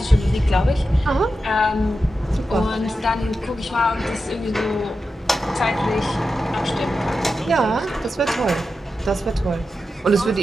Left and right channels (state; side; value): normal; both; correlation 0.90